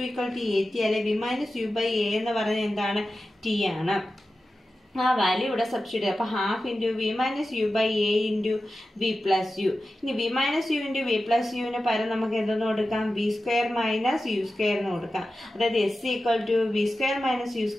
equal to AT അല്ലെ V minus U by A എന്ന് പറയുന്നത് എന്താണ്? T ആണ്. ആ വാല്യൂ ഇവിടെ സബ്സ്റ്റിറ്റ്യൂട്ട് ചെയ്യാം. അപ്പോൾ half into V minus U by A into V plus U. ഇനി V minus U into V plus യുവിന് പകരം നമുക്ക് എന്തെന്ന് കൊടുക്കാം? V square minus U square എന്ന് കൊടുക്കാം. അതായത് S equal to V square minus U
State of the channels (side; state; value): both; normal; correlation 0.93